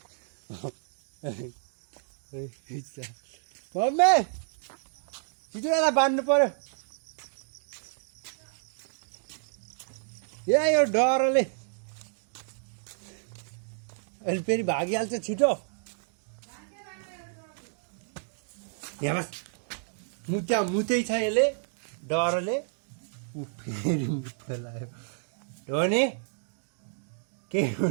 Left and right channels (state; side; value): silent; left; digital silence